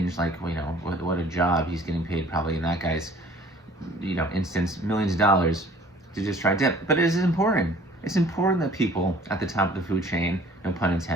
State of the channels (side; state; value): both; normal; correlation 0.53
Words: like, you know, what a job, he's getting paid probably in that guy's, you know, instance, millions of dollars to just try dip. But it is important. It's important that people at the top of the food chain, no pun